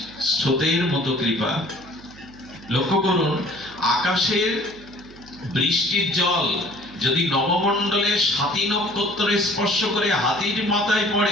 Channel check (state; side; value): noise; right; hum, 22 dB below the sound